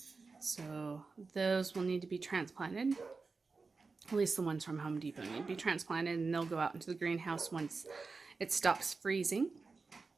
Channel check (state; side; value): quieter; left; 4.3 dB